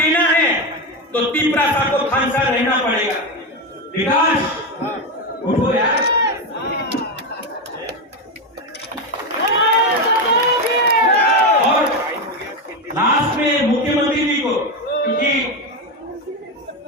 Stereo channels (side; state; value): both; normal; correlation 0.12